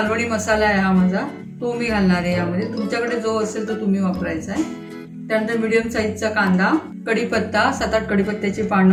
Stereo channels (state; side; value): identical; both; correlation 1.00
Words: मसाला आहे हा माझा, तो मी घालणार आहे यामध्ये। तुमच्याकडे जो असेल तो तुम्ही वापरायचा आहे। त्यानंतर मीडियम साईजचा कांदा, कढीपत्ता, 7-8 कढीपत्त्याची